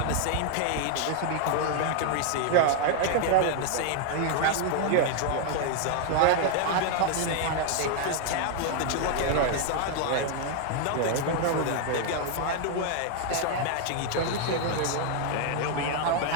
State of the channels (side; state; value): both; different; correlation 0.00